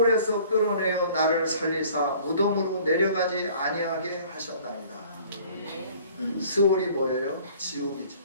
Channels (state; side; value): inverted; both; correlation -0.52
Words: 끌어내어 나를 살리사 무덤으로 내려가지 아니하게 하셨나이다. 스올이 뭐예요? 지옥이지.